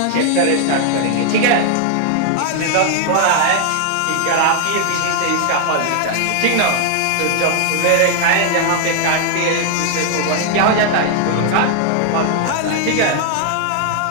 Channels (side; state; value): both; different; correlation 0.00